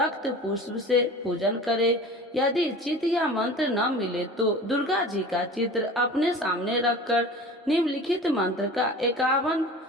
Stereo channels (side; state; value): both; normal; correlation 0.38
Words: पुष्प से पूजन करे। यदि चित्र या मंत्र न मिले तो दुर्गा जी का चित्र अपने सामने रखकर निम्नलिखित मंत्र का 51